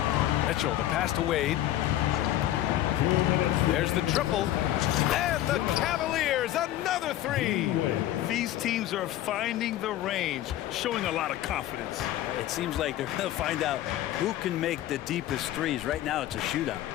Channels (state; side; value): quieter; right; 13.5 dB